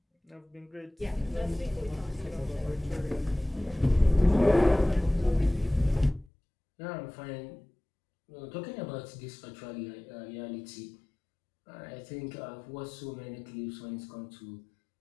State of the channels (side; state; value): right; drops out; at 6.2 s